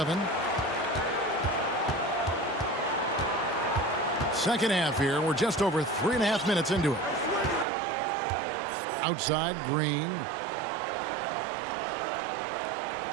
Second half here. We're just over 3.5 minutes into it. Outside, Green.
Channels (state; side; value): drops out; left; at 7.7 s